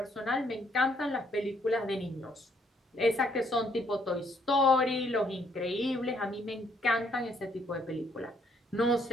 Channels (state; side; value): normal; both; correlation 0.69